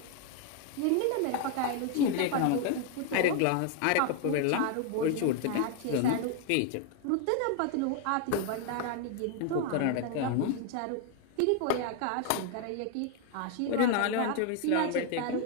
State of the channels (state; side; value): different; both; correlation 0.00